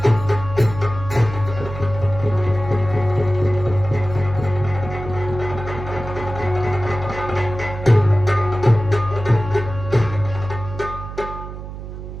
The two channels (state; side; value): noise; right; hum, 10 dB below the sound